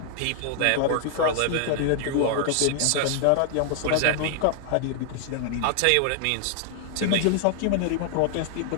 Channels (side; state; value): both; different; correlation 0.00